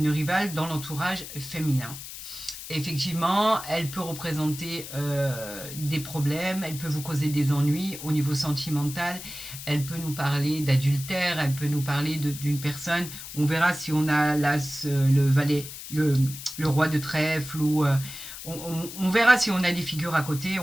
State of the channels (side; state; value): left; noise; hiss, 11 dB below the sound